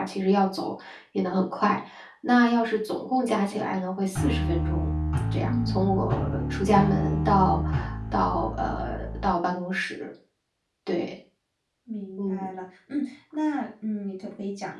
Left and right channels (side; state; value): both; identical; correlation 1.00